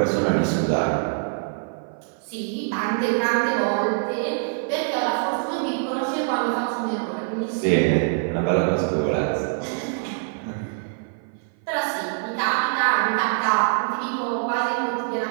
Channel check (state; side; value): silent; left; 55 dB below the other